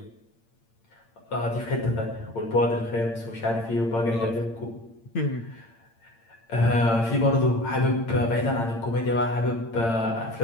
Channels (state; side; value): late; right; 8.8 ms